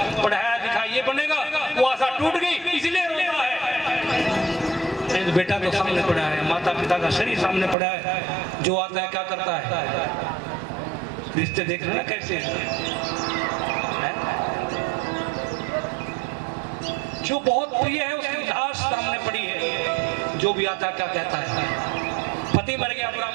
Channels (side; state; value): left; drops out; at 7.8 s